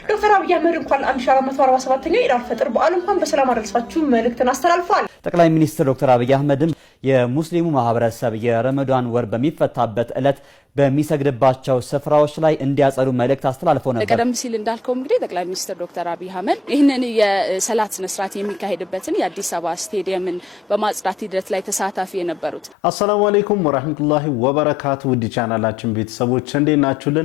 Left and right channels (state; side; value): normal; both; correlation 0.87